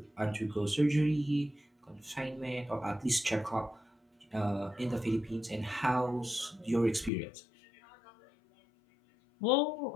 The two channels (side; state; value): right; drops out; at 7.1 s